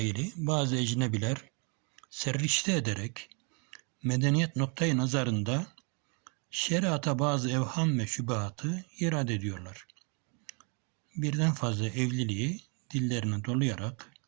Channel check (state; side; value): quieter; left; 36.1 dB